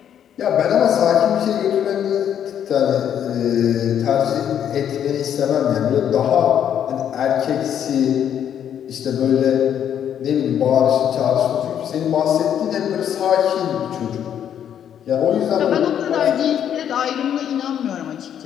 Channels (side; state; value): right; quieter; 9.4 dB